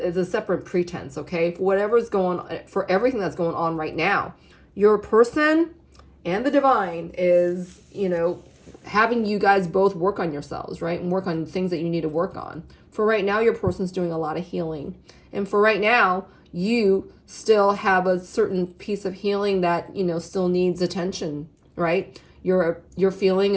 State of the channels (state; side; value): identical; both; correlation 1.00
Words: separate pretense, okay? For whatever's going on, for everything that's going on right now, your person and the divine is, you know, having you guys both work on yourselves, right? And work on things that you need to work on. For right now, your person's doing a lot of healing. And for right now, you still have a certain piece of healing that, you know, still needs attention, right? Your feeling